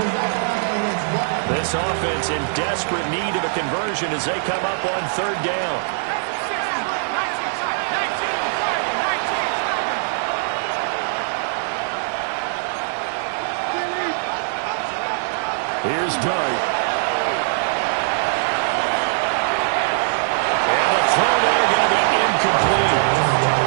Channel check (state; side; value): silent; left; digital silence